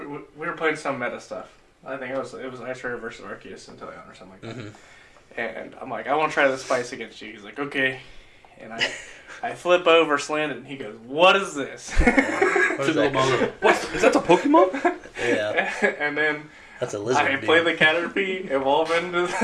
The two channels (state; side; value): identical; both; correlation 1.00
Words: were playing some meta stuff. I think it was Ice Raider versus Arceus and Teleon or something like that. Mm-hmm. And I'm like, I want to try the spice against you. He's like, okay, and I flip over, slant it, and he goes, "What is this?" Is that a Pokemon? Yeah. And then that's a lizard. I play the Caterpie, evolve into